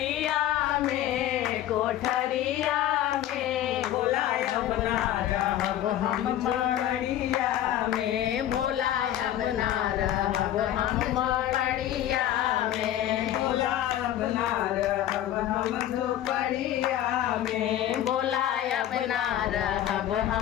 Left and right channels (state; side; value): quieter; right; 12.3 dB